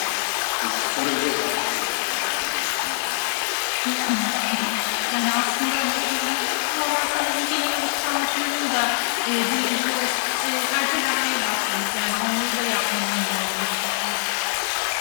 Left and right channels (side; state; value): right; silent; digital silence